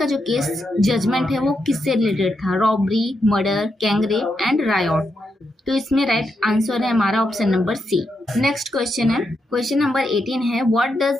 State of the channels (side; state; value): both; normal; correlation 0.83